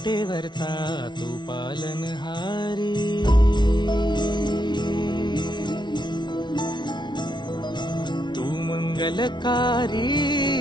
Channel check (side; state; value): right; late; 0.21 ms